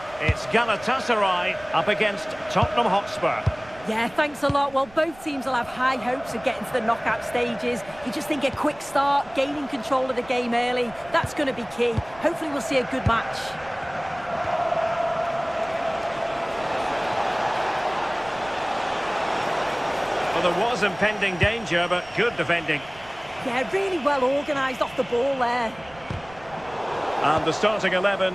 It's Gatasaray up against Tottenham Hotspur. Yeah, thanks a lot. Well, both teams will have high hopes of getting to the knockout stages. You just think a quick start, gaining control of the game early, that's going to be key. Hopefully we'll see a good match. Well, there was impending danger, but good defending. Yeah, really well organised off the ball there. And the starting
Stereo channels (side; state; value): right; noise; rumble, 22 dB below the sound